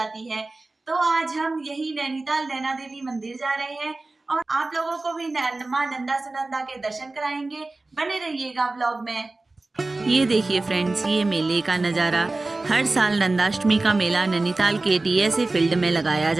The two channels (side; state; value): left; quieter; 3.2 dB